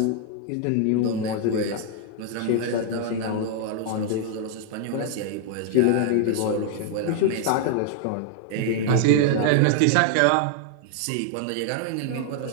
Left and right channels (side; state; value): both; different; correlation 0.00